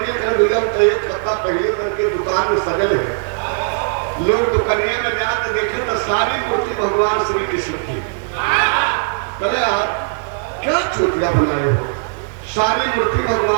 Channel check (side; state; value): left; silent; digital silence